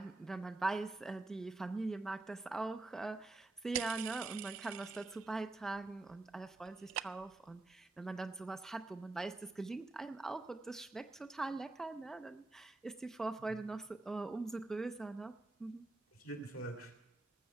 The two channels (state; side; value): quieter; left; 3.1 dB